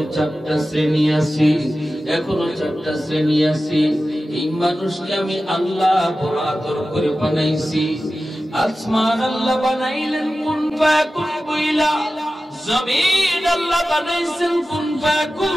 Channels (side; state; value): both; normal; correlation 0.94